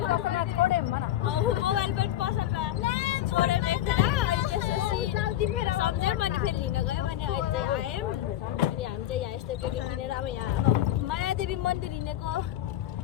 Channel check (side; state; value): right; quieter; 12.7 dB